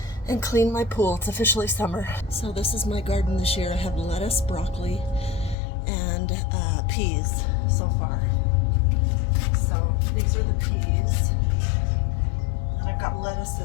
and clean my pool. It's officially summer. So this is my garden this year. I have lettuce, broccoli, and peas so far. So these are the peas. And I've got lettuce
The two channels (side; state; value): right; drops out; at 5.6 s